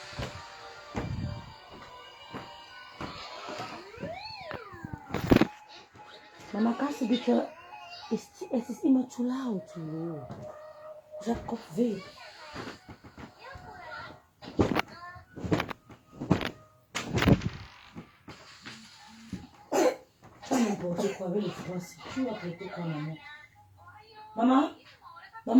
Maman, quand c'est dit que c'est immature ou tout. Jacob V. Tu vas n'importe quoi avec les Français. Tu vas traiter quoi, maman? Maman?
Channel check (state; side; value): identical; both; correlation 1.00